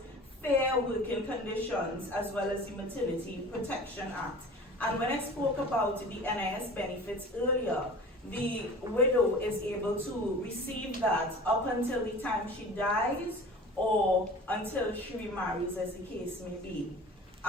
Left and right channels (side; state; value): both; normal; correlation 0.41